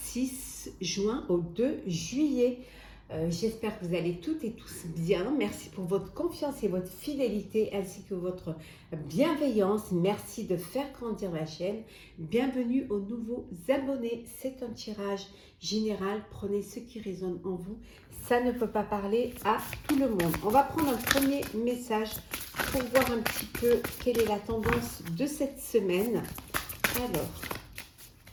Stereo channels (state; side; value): identical; both; correlation 1.00